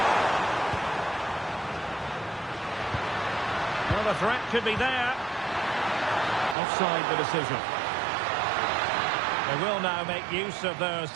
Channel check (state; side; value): drops out; left; at 6.6 s